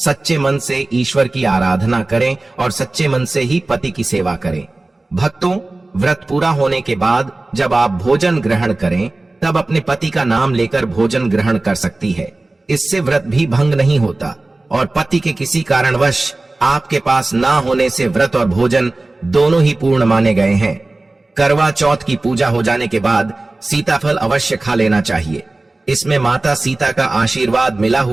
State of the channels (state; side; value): quieter; left; 3.0 dB